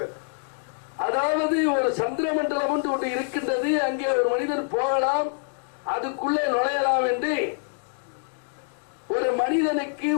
earth. அதாவது ஒரு சந்திரமண்டலம் ஒன்று இருக்கின்றது, அங்கே ஒரு மனிதன் போகலாம், அதுக்குள்ளே நுழையலாம் என்று ஒரு மனிதனுக்கு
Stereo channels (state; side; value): silent; right; digital silence